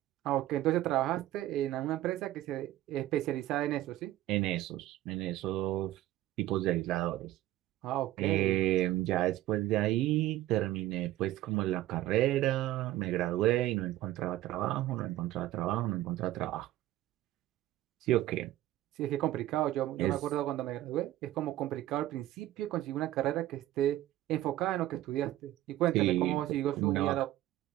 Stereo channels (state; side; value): quieter; left; 14.7 dB